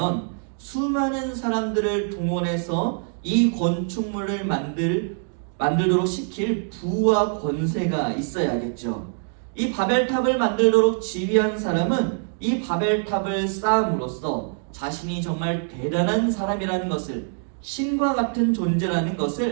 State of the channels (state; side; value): silent; left; 63 dB below the other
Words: 수많은 사람들을 동원해서 이 건축물을 만들도록 시킬 부와 권세가 있어야겠죠. 이 바벨탑을 만들도록 지휘한 사람은 이 바벨탑을 쌓음으로써 자신이 정말 대단한 사람이라는 것을, 신과 같은 존재라는